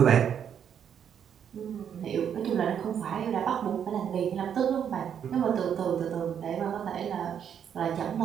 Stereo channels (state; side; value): quieter; left; 8.4 dB